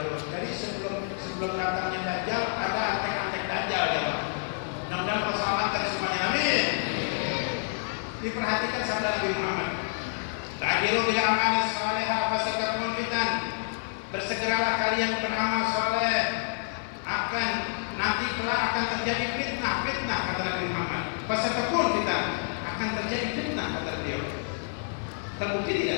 Jadi sebelum datangnya Dajjal ada antek-antek Dajjal ya Pak. Mudah-mudahan keselamatan semuanya, amin. Diperhatikan sabda Nabi Muhammad. Ta'jilu bil a'mal salihah fasatakum fitan. Bersegeralah kalian beramal soleh, nanti kelak akan terjadi fitnah kata Nabi Muhammad. Fasatakum fitan, akan terjadi fitnah kata beliau. Terbukti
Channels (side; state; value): right; silent; 59 dB below the other